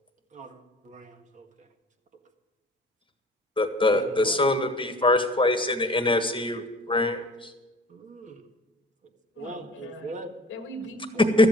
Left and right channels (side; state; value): both; normal; correlation 0.46